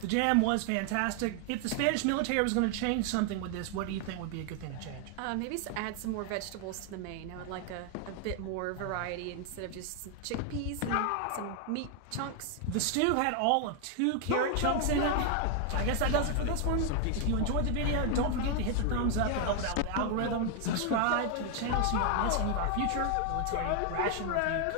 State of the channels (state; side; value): different; both; correlation 0.00